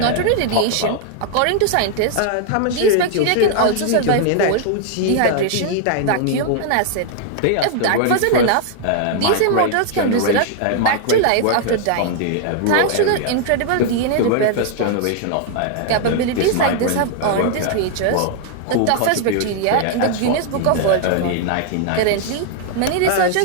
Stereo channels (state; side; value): different; both; correlation 0.00